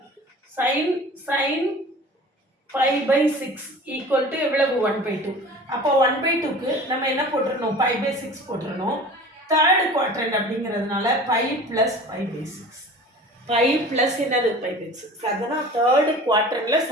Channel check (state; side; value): normal; both; correlation 0.41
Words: sin π/6 equal to எவ்வளவு? 1/2. அப்போ 1/2க்கு நம்ம என்ன போட்டுறணும்? π/6 போட்டுறணும். தேர்ட் குவாட்ரண்ட் அப்படிங்கிறதுனால pi plus pi by 6. Pi plus என்னது பை பை 6. அதுதான் தேர்டு குவாட்ரண்டில்